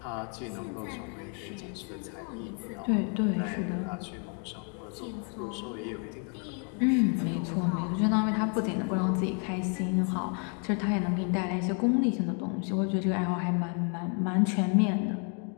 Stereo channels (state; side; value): quieter; right; 39.9 dB